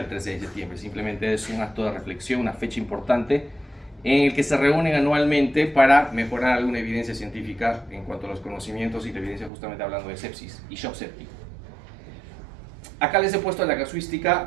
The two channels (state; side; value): drops out; left; at 9.5 s